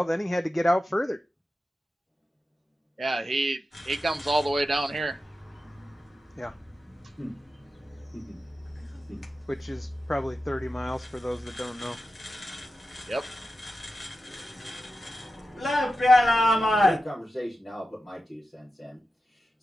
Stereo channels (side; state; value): both; normal; correlation 0.92